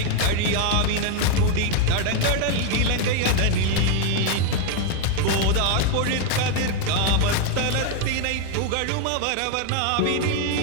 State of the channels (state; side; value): different; both; correlation 0.01